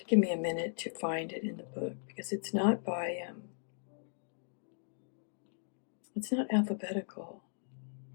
Give me a minute to find it in the book, because it's not by it's not alphabetical.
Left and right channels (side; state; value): right; silent; digital silence